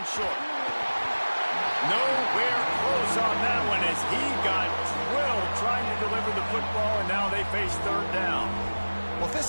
short. Nowhere close on that one as he got drilled trying to deliver the football, and now they face 3rd down. Well, if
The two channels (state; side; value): inverted; both; correlation -1.00